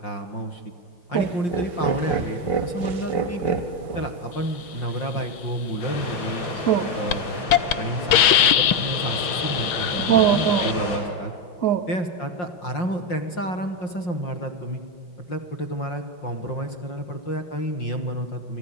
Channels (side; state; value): right; late; 6.2 ms